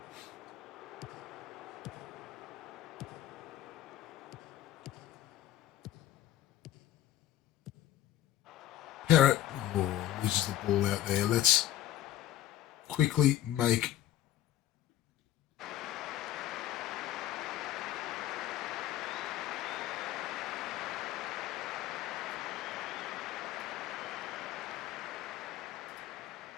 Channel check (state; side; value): quieter; right; 12.8 dB